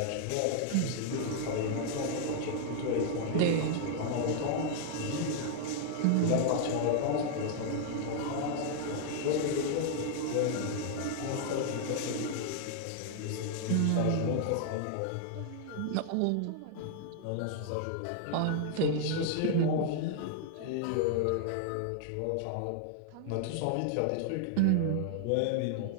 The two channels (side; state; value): both; different; correlation 0.00